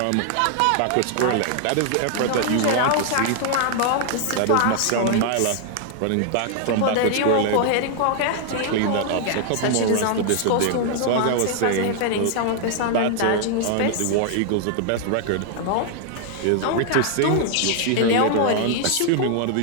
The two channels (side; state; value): both; different; correlation 0.00